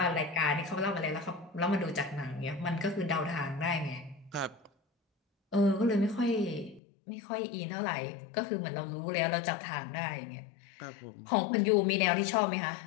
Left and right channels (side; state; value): right; drops out; at 6.8 s